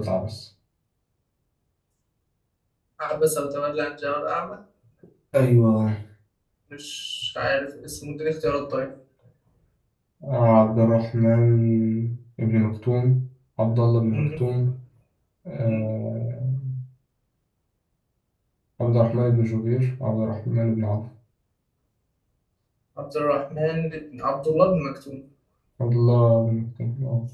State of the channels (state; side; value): identical; both; correlation 1.00